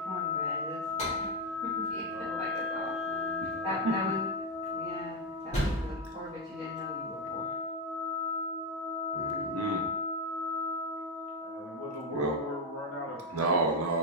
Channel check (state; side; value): normal; both; correlation 0.06